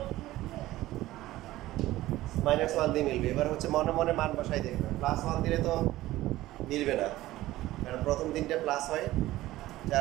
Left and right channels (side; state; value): left; quieter; 16.3 dB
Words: -1 দিয়ে মিলবে। এবার হচ্ছে মনে মনে মান বসাই দেখবে, +1 দিলে তো মিলবে না, কারণ প্রথম দিনটা প্লাস হয়,